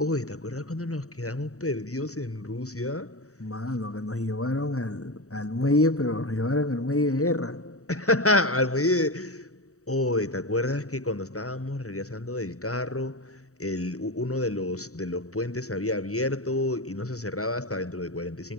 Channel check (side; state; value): right; late; 0.65 ms